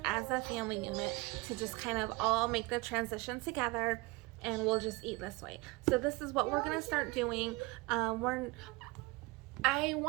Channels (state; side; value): quieter; left; 23.8 dB